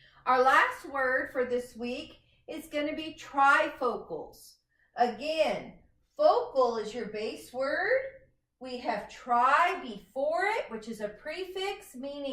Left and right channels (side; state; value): both; identical; correlation 1.00